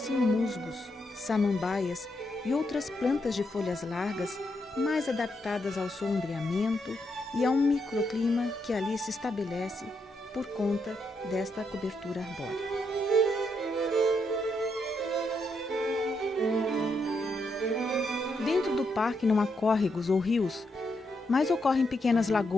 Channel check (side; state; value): both; normal; correlation 0.80